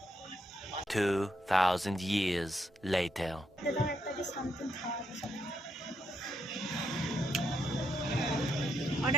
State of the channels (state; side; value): normal; both; correlation 0.79